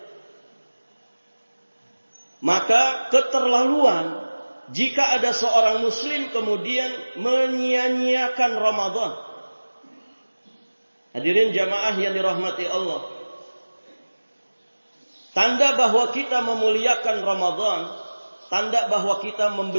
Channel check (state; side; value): inverted; both; correlation -1.00